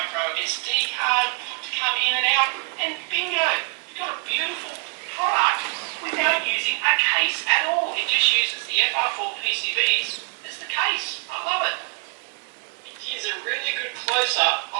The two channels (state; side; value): quieter; left; 35.4 dB